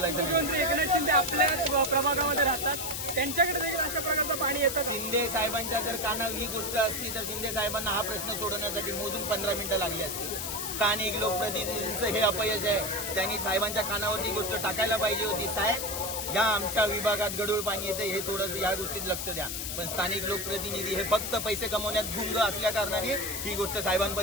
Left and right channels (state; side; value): noise; left; hiss, 4 dB below the sound